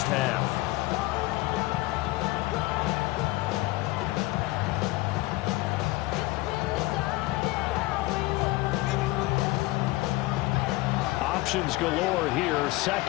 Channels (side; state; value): right; quieter; 19.9 dB